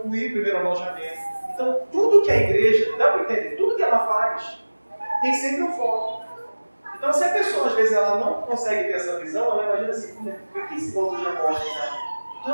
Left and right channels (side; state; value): both; inverted; correlation -1.00